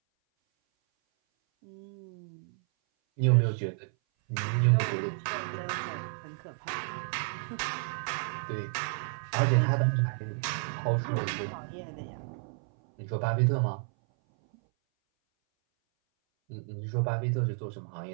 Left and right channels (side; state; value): left; silent; 57 dB below the other